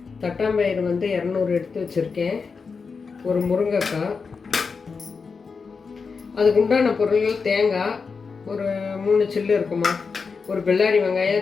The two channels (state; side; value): quieter; right; 5.1 dB